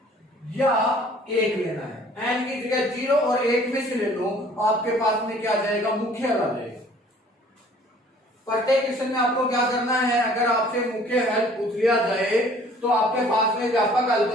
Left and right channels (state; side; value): normal; both; correlation 0.54